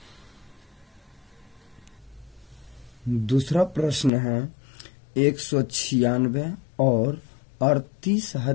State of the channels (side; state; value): right; drops out; at 4.1 s